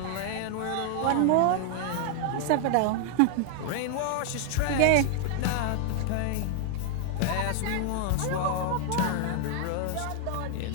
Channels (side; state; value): both; different; correlation 0.00